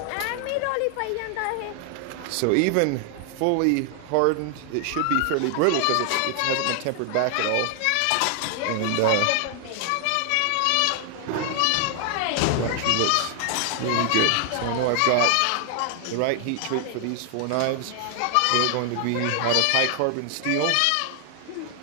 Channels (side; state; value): both; different; correlation 0.00